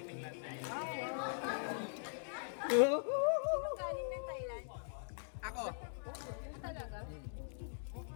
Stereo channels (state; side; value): silent; right; digital silence